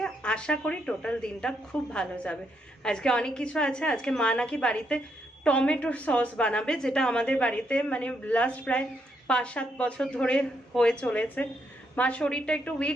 আশা করি টোটাল দিনটা খুব ভালো যাবে। আজকে অনেক কিছু আছে। আজকে মা নাকি বাড়িতে টমেটো সস বানাবে, যেটা আমাদের বাড়িতে মানে লাস্ট প্রায় 5-7 বছর ধরে হয়ে চলেছে। মার শরীরটা একটু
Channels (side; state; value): both; normal; correlation 0.77